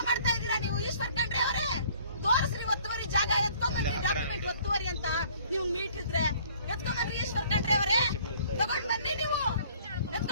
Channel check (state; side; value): inverted; both; correlation -0.57